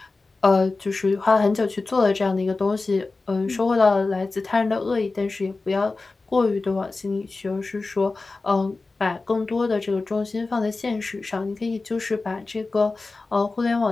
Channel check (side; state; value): right; quieter; 3.6 dB